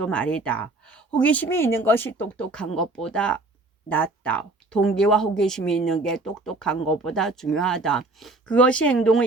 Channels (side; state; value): left; quieter; 3.0 dB